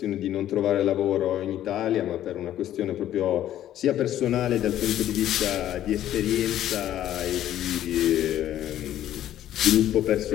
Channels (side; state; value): right; quieter; 12.1 dB